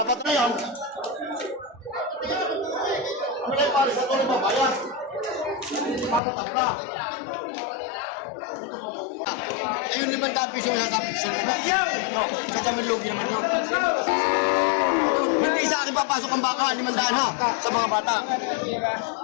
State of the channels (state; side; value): drops out; right; at 6.2 s